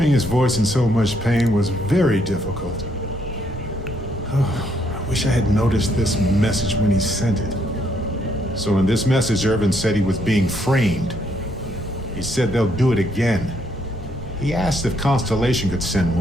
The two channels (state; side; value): normal; both; correlation 0.72